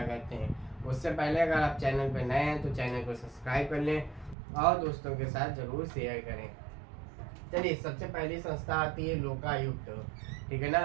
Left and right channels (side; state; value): left; drops out; at 4.4 s